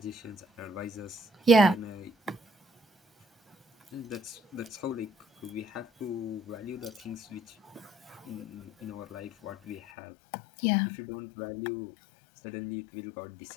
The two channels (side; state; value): right; drops out; at 9.8 s